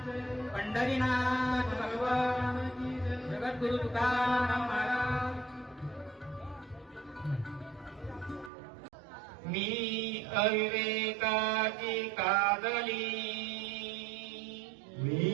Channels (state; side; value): drops out; left; at 8.5 s